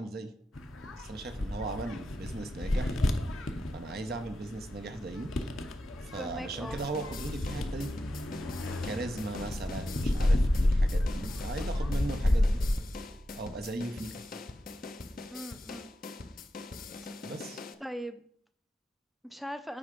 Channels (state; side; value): normal; both; correlation 0.89